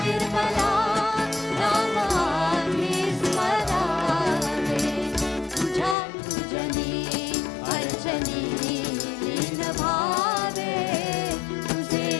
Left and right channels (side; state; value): right; drops out; at 6.0 s